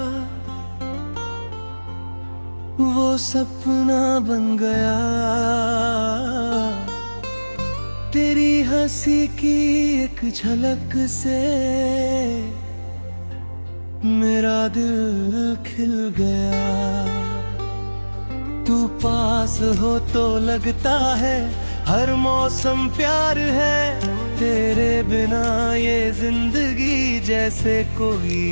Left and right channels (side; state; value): both; inverted; correlation -1.00